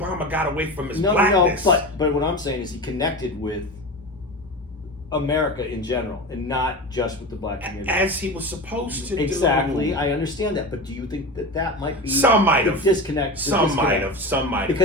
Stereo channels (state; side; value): normal; both; correlation 0.26